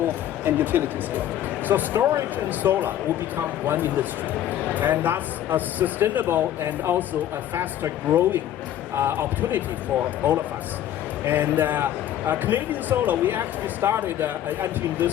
and utility scale? So storage and solar will become one industry, and that's a sustainable and also a faster growing opportunity for all of us. And Canadian Solar, we actually started entering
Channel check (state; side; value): quieter; right; 11.7 dB